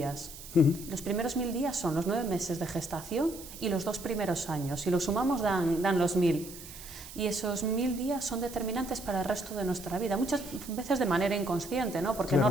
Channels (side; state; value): right; noise; hiss, 14 dB below the sound